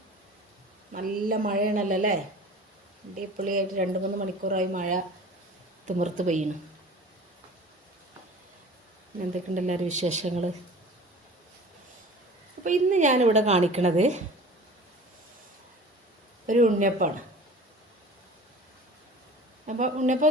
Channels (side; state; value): both; normal; correlation 0.42